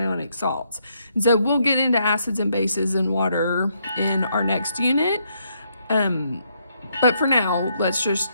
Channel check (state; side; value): inverted; both; correlation -0.75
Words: salts. And so we'll get into acids and bases and water in our next unit. But for now, let's